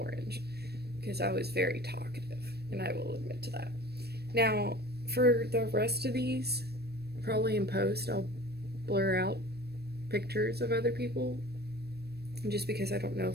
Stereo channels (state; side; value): late; left; 0.47 ms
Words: because I was very talkative, and I will admit to that. Now, for the rest of these, probably in post, I'll blur out pictures of other people just because I don't know